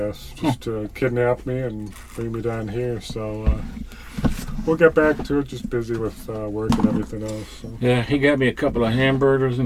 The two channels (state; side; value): identical; both; correlation 1.00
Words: Just to kidnap me and bring me down here. So we'll get back to it. Just busy with work and everything else. So. Yeah, he got me a couple of hamburgers